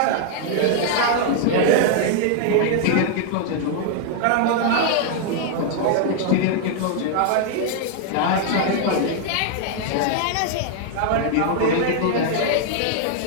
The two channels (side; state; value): both; different; correlation 0.00